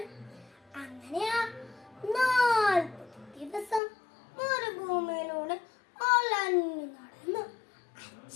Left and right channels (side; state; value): right; drops out; at 3.8 s